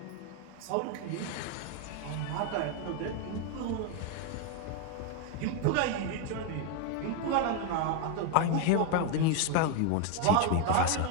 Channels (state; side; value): different; both; correlation 0.01